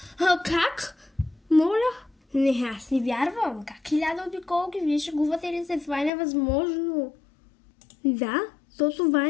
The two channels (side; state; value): right; drops out; at 6.1 s